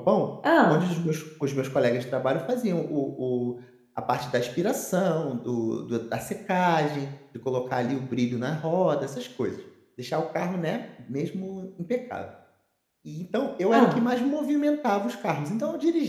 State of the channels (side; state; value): both; identical; correlation 1.00